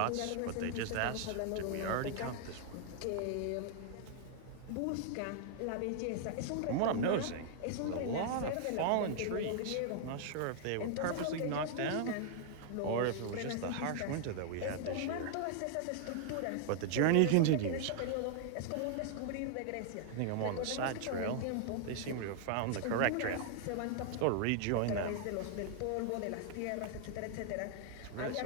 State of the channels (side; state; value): both; different; correlation 0.00